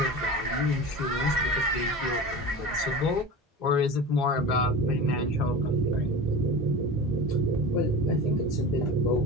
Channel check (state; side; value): normal; both; correlation 0.31